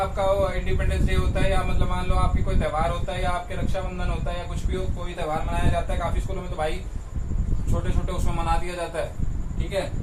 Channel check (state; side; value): identical; both; correlation 1.00